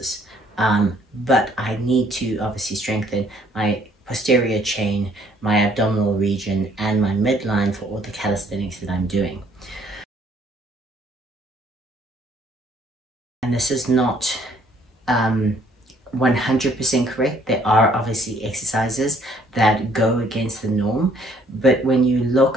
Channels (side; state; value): both; normal; correlation 0.63